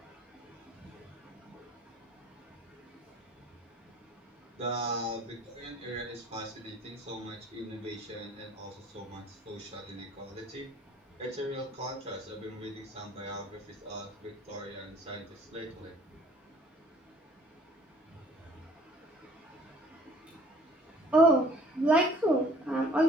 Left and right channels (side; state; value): both; normal; correlation 0.55